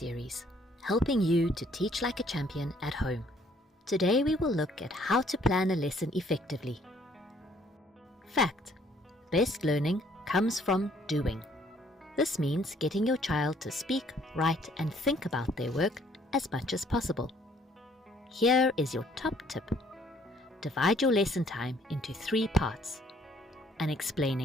helping you to teach like a champion at home. Today we will look at how to plan a lesson effectively. Fact: best learning comes from doing. This means getting your child to speak, write, and think about their work as much as possible. Here is your top tip. Divide your lesson time into 3 parts. An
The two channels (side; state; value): both; normal; correlation 0.63